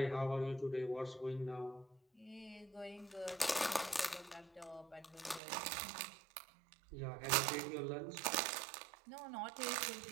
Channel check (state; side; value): drops out; left; at 5.4 s